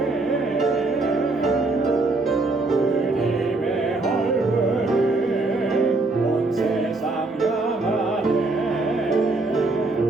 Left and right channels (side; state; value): left; quieter; 3.3 dB